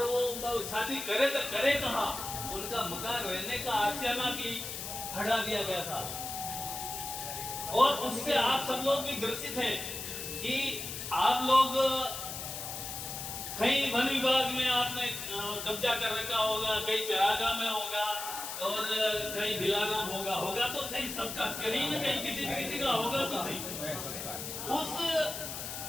वो शादी करे तो करे कहां? उनका मकान रहने का आशियाना भी हटा दिया गया था। और उससे आप सब लोग भी ग्रसित हैं कि आप लोग कहीं वन विभाग में आपने कब्जा कर रखा होगा, कहीं चरागा में होगा, और कहीं बिलाना होगा तो सही, सबका कहीं न कहीं किसी का होगा तो सही। उस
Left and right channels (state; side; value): noise; left; hiss, 6 dB below the sound